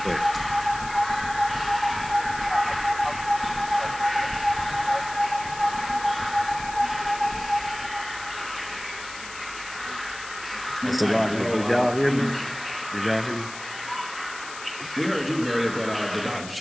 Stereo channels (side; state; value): left; noise; hiss, 13 dB below the sound